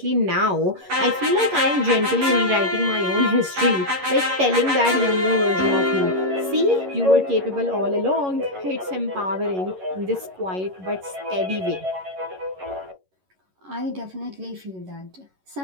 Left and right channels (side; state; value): left; late; 11 ms